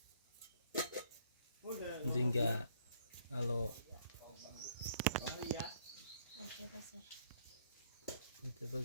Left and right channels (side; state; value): both; inverted; correlation -0.64